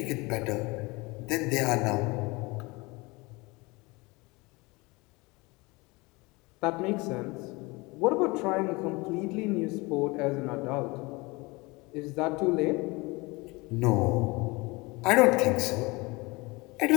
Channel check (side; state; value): right; quieter; 24.6 dB